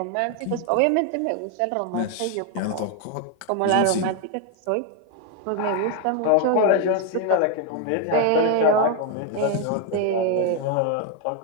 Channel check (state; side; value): different; both; correlation 0.01